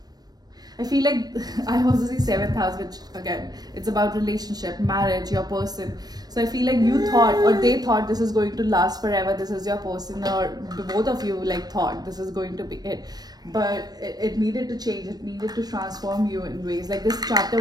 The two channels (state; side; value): late; left; 0.19 ms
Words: feel like I also see seventh house, which again, it's about relationship, marriage, your person. So I feel like you thought, or they thought, this is going to last forever, this is your person, or both of you like thought this is going to be it. But it needed to change, it needed to transform you in ways. Like this